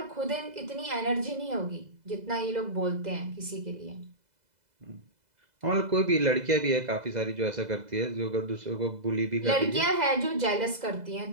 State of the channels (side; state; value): left; late; 2.0 ms